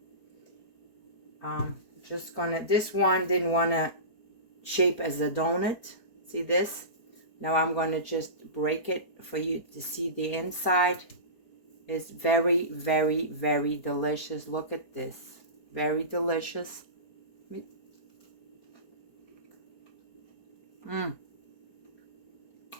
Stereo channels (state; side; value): late; right; 4.6 ms